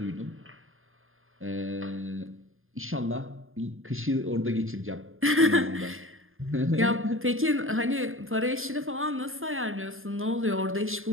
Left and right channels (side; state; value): left; late; 0.60 ms